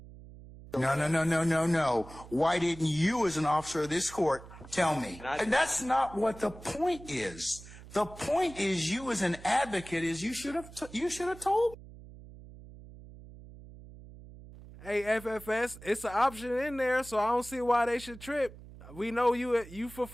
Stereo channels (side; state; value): right; noise; hum, 17 dB below the sound